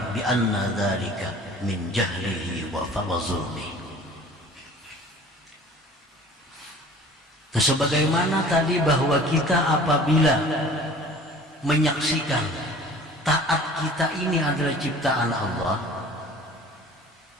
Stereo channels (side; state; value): both; normal; correlation 0.46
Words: bi anna dhalika min jahlihi wa zulmi. Sebagaimana tadi bahwa kita apabila menyaksikan taat kita ini adalah ciptaan Allah,